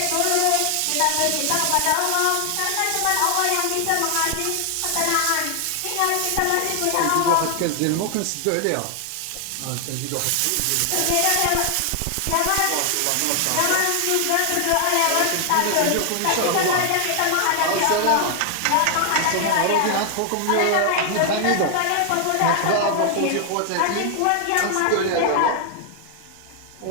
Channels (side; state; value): both; different; correlation 0.00